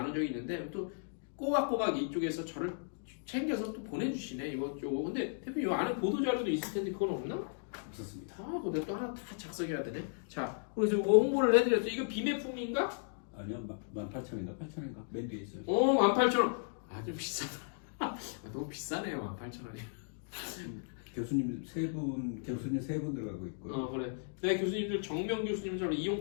적이 있는데 또 꼬박꼬박 이쪽에서 저를 챙겨서 또 보내주시네 이것저것. 근데 대표님 이 안에 보도자료도 있을 텐데 그건 없나? 없었습니다. 근데 또 하나 다 작성해야 되네. 자, 그래서 이거 홍보를 해드렸죠. 이거 비매품인가? 아니요, 18,000원인가 8,000원인가 맨 뒤에 있어요. 18,000원. 아, 좀 비싸다. 너무 비싸네요, 18,000원이. 교수님 세 분 들어가고 있고요. 그래. 내 교수님들 정명 교수님처럼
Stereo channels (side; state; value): right; silent; digital silence